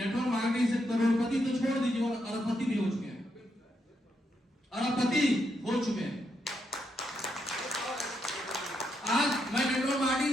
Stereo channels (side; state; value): both; normal; correlation 0.80